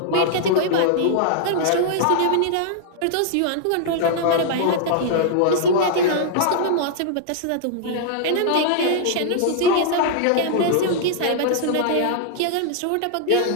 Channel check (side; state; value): both; different; correlation -0.01